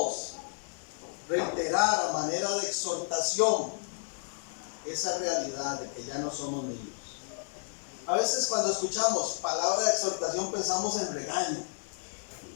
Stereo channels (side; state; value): right; silent; 57 dB below the other